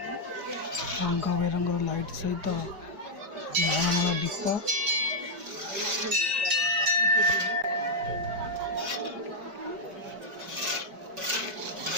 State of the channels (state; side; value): late; left; 5.0 ms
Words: ରଙ୍ଗ ବେରଙ୍ଗର ଲାଇଟ୍ ସହିତ ମାଳ ମାଳ ଦୀପ।